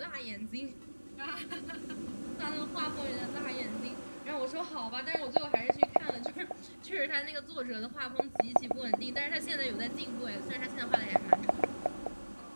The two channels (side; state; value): both; inverted; correlation -1.00